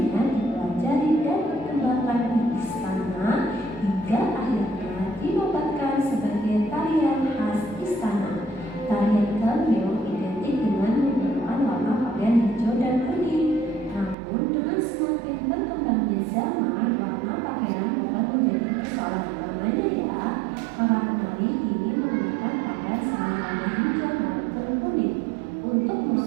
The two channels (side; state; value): left; drops out; at 14.2 s